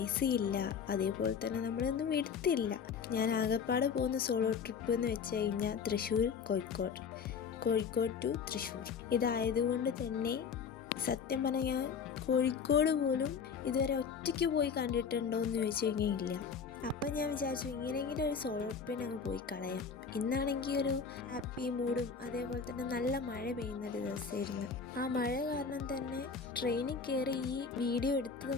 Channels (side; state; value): right; quieter; 6.1 dB